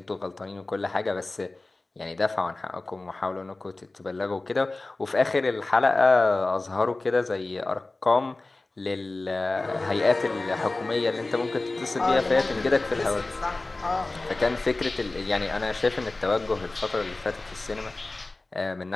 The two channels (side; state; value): right; quieter; 3.1 dB